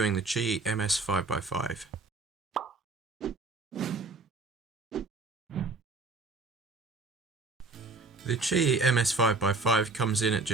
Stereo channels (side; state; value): left; quieter; 3.7 dB